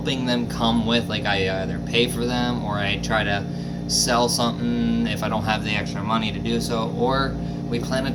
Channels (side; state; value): both; identical; correlation 1.00